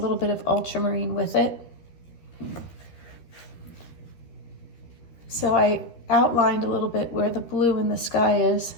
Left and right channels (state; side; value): late; right; 13 ms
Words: bit of ultramarine with it. So I outlined a little bit where the blue in the sky is,